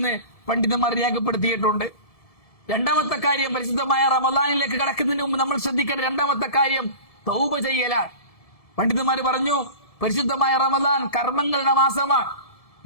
പണ്ഡിതന്മാർ രേഖപ്പെടുത്തിയിട്ടുണ്ട്. രണ്ടാമത്തെ കാര്യം, പരിശുദ്ധമായ റമദാനിലേക്ക് കടക്കുന്നതിന് മുമ്പ് നമ്മൾ ശ്രദ്ധിക്കേണ്ട രണ്ടാമത്തെ കാര്യം തൗബ ചെയ്യലാണ്. പണ്ഡിതന്മാർ പറഞ്ഞു, പരിശുദ്ധമായ റമദാൻ കർമ്മങ്ങളുടെ മാസമാണ്,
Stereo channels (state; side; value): late; right; 1.7 ms